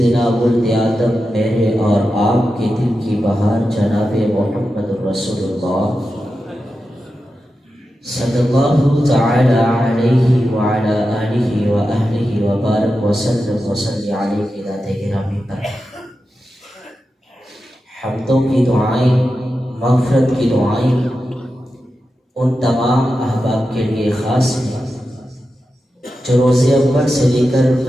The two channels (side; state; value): both; normal; correlation 0.91